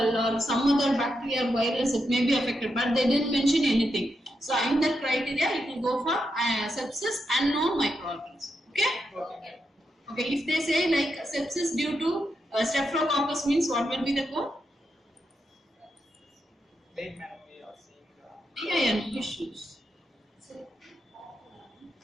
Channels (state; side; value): normal; both; correlation 0.84